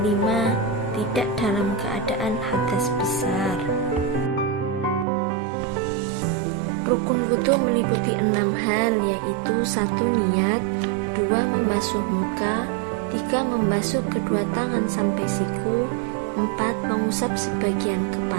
5. Tidak dalam keadaan hadas besar. Rukun wudu meliputi 6 hal, yaitu 1. Niat, 2. Membasuh muka, 3. Membasuh kedua tangan sampai siku, 4. Mengusap sebagian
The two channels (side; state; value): left; drops out; at 5.1 s